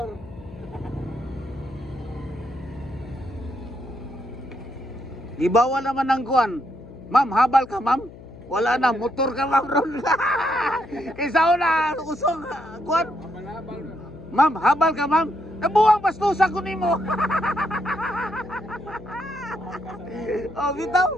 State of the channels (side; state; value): left; noise; hum, 17 dB below the sound